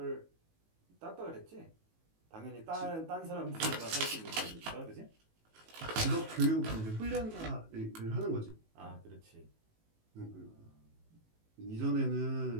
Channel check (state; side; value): late; left; 18 ms